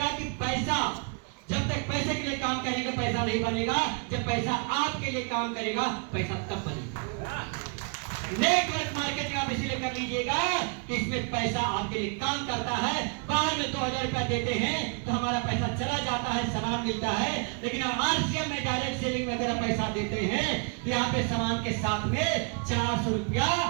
कि पैसा, जब तक पैसे के लिए काम करेंगे पैसा नहीं बनेगा, जब पैसा आपके लिए काम करेगा पैसा तब बनेगा। नेटवर्क मार्केटिंग आप इसलिए कर लीजिएगा कि इसमें पैसा आपके लिए काम करता है। बाहर में 2000 रुपया देते हैं तो हमारा पैसा चला जाता है, सामान मिलता है, लेकिन हम आरसीएम में डायरेक्ट सेलिंग में अगर पैसा देते हैं तो यहाँ पे सामान के साथ में 400 रुपया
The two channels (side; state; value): left; quieter; 36.3 dB